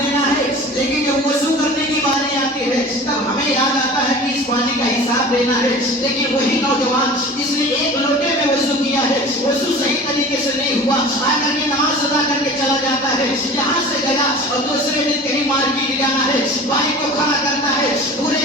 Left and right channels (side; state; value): both; normal; correlation 0.39